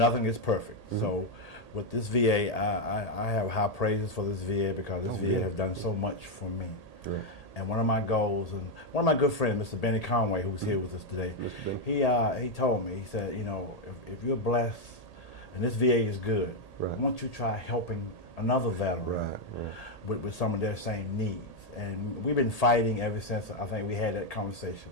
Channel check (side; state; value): right; late; 1.8 ms